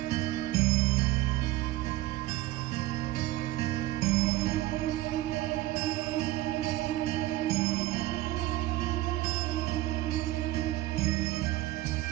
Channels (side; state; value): left; quieter; 16.5 dB